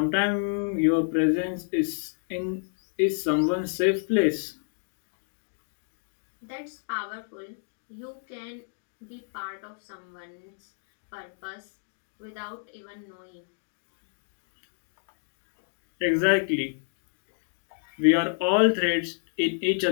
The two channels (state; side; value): silent; right; digital silence